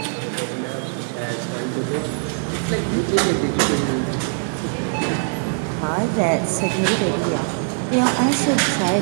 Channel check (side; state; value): left; silent; 64 dB below the other